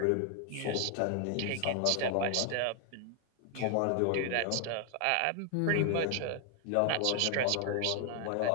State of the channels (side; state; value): both; different; correlation 0.00